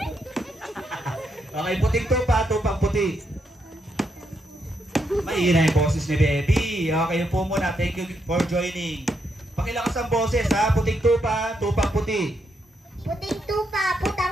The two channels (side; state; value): both; normal; correlation 0.79